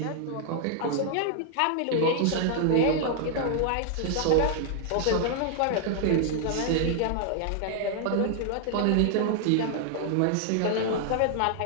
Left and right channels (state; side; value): different; both; correlation 0.00